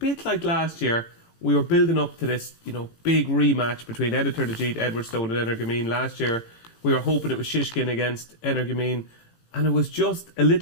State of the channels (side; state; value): right; late; 18 ms